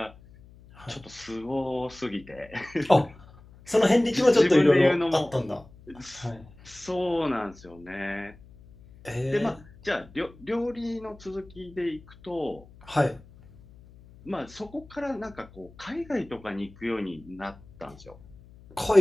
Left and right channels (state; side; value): noise; left; hum, 23 dB below the sound